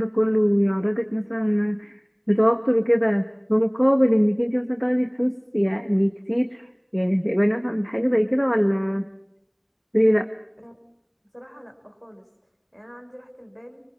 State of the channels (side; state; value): both; identical; correlation 1.00